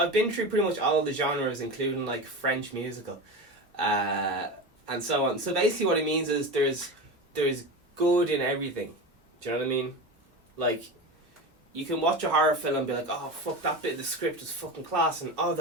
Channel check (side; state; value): both; normal; correlation 0.25